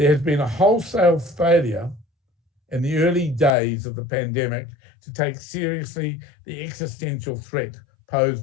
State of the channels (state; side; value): drops out; right; at 3.6 s